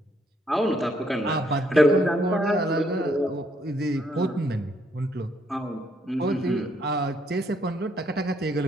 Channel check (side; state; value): both; normal; correlation 0.71